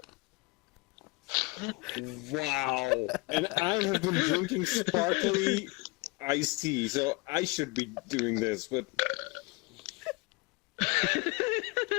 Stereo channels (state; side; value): quieter; right; 26.0 dB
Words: Wow. And I have been drinking sparkly iced tea, so I should be doing this, but...